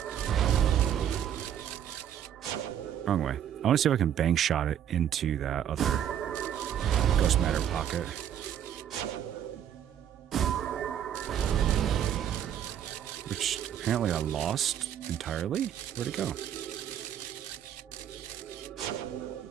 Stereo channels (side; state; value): left; quieter; 9.8 dB